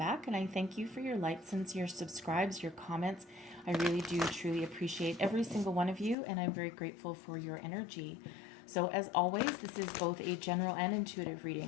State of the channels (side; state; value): right; drops out; at 6.2 s